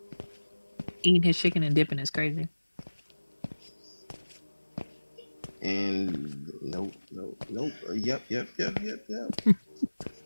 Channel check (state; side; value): inverted; both; correlation -1.00